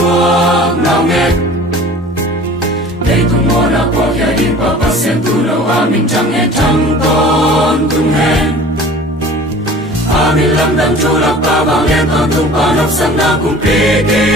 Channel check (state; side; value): normal; both; correlation 0.44